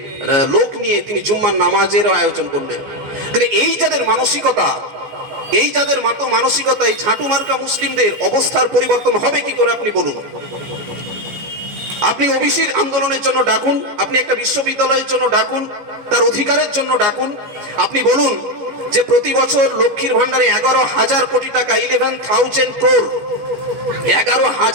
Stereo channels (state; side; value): late; left; 14 ms